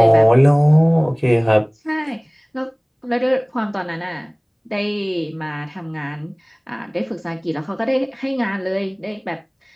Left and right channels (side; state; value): both; identical; correlation 1.00